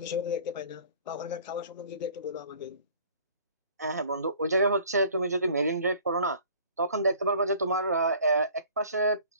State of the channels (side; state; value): both; inverted; correlation -0.51